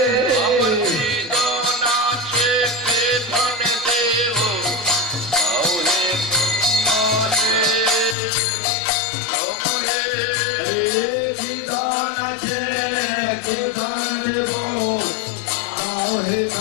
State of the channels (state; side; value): drops out; right; at 8.2 s